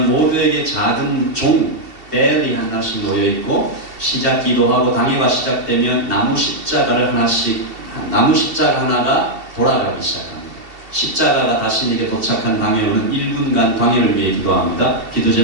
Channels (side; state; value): left; late; 2.7 ms